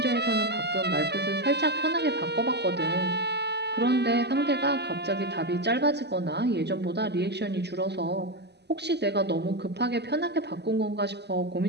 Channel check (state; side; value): late; left; 0.49 ms